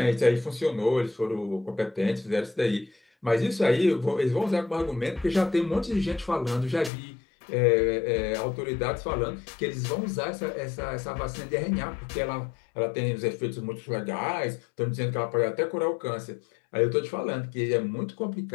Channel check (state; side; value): drops out; right; at 6.9 s